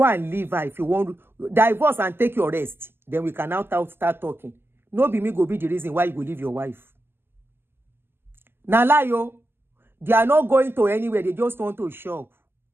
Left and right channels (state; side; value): late; left; 0.11 ms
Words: and leave her if you want to. Divorce and take your rest. Then we can now start talking. No be me go be the reason why you go leave your wife. Now lie yo. They are not going to anywhere. They just want to shop.